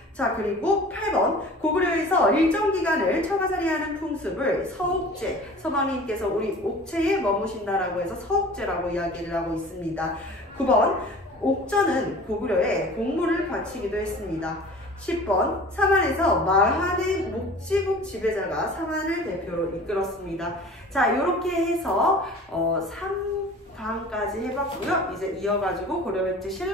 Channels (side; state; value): both; normal; correlation 0.43